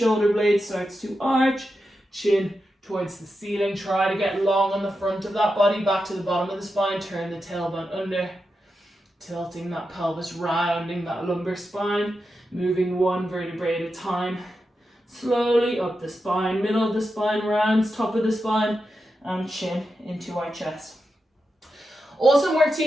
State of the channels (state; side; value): normal; both; correlation 0.89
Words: blades starts to arch. Chin towards the ceiling. Try to get long on the front of that body. Back to the bottom of the spine. Turn the tailbone under. Tilting that pelvis, rounding that lumbar spine, moving one vertebrae at a time. Slowly up the spine, middle of the spine, rounds, top of the spine, and chin into our chest. Awesome work,